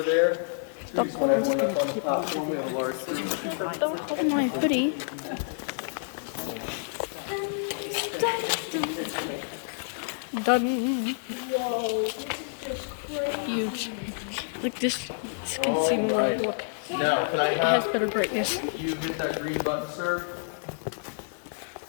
there. We just want everyone up on the platform. We have a large team. Don't hold my hoodie. Done. Huge. Like this can see more. Look, Now, can I it has better brightness. you hit that green button, sir?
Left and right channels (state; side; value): silent; right; digital silence